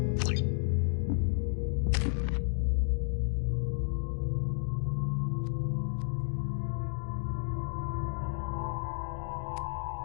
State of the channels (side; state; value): right; silent; digital silence